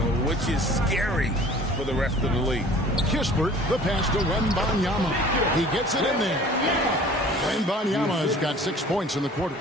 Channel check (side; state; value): both; normal; correlation 0.48